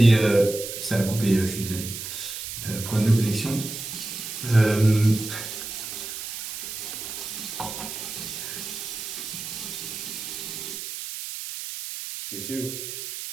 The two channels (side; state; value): right; noise; hiss, 7 dB below the sound